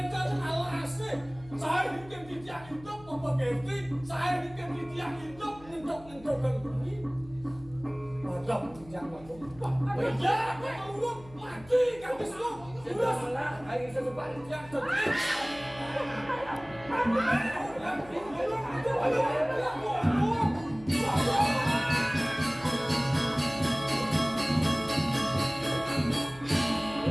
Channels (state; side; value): noise; left; hum, 21 dB below the sound